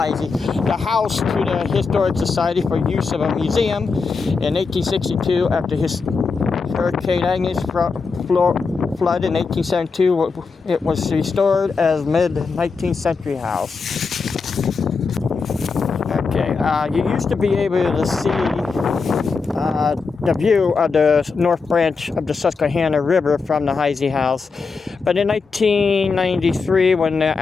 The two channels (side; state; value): right; quieter; 4.7 dB